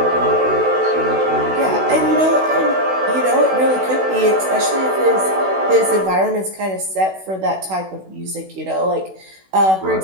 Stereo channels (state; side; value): late; left; 16 ms